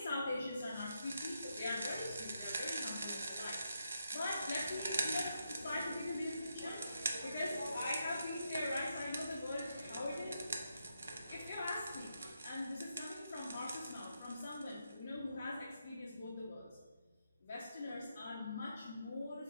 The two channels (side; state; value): both; inverted; correlation -0.81